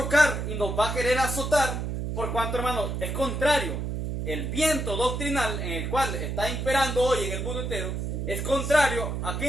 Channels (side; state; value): right; noise; hum, 3 dB below the sound